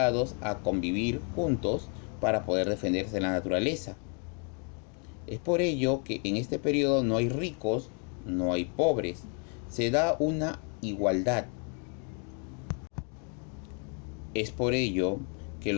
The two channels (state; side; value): quieter; right; 39.8 dB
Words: a convivir juntos para poder defenderse de la naturaleza. Es por ello que en este periodo no hay ricos, no hay pobres. Se da una igualdad. Es por ello que